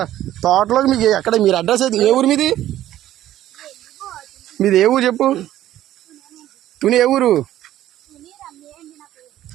తోటలోకి? మీకు ఎక్కడ మీరు అడ్రస్ అయితే ఏ ఊరు మీది? మీది ఏ ఊరు చెప్పు. తుని ఏ ఊరు?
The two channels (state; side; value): quieter; left; 13.2 dB